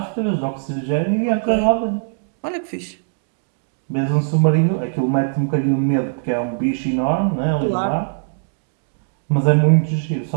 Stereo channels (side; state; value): left; silent; digital silence